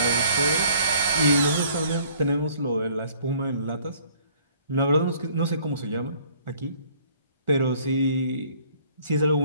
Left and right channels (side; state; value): both; inverted; correlation -0.58